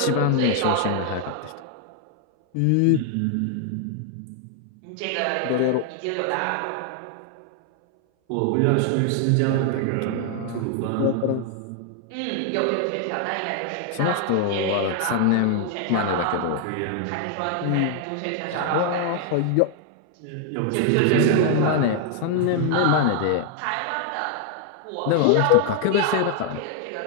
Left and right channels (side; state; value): both; different; correlation 0.00